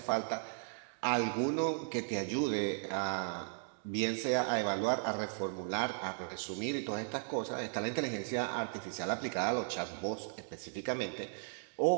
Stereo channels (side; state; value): left; silent; digital silence